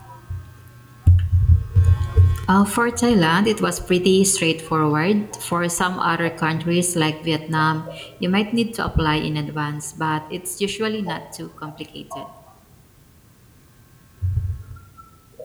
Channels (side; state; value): both; identical; correlation 1.00